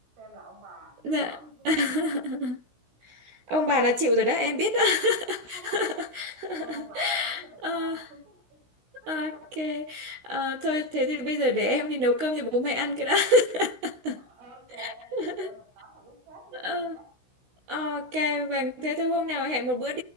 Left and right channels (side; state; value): left; late; 16 ms